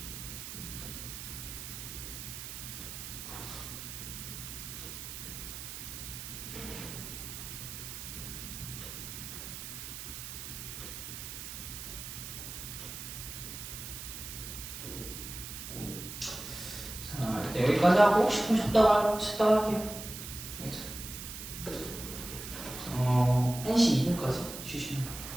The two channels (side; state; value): right; noise; hiss, 9 dB below the sound